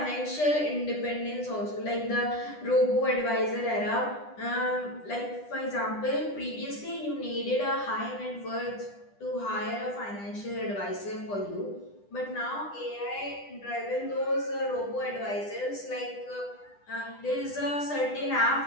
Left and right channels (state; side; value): late; right; 10 ms